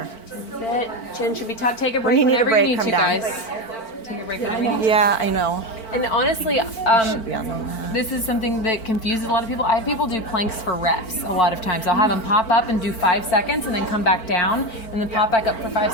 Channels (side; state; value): right; late; 4.5 ms